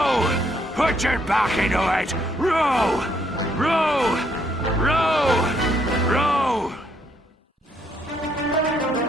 Put your back into it! Row! Row!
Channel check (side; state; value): both; normal; correlation 0.71